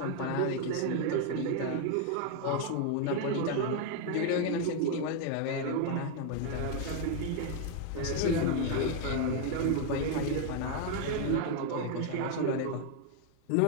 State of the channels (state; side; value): different; both; correlation 0.01